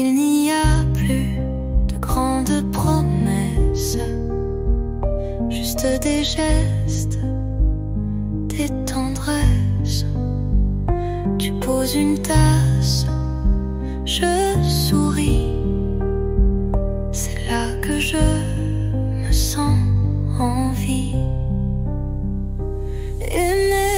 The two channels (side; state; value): both; identical; correlation 1.00